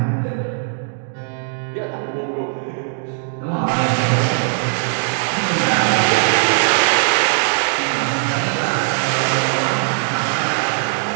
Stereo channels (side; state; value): left; silent; digital silence